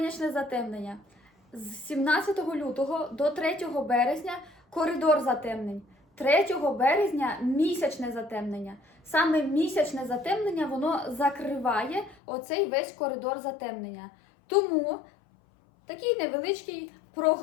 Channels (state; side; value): drops out; right; at 12.2 s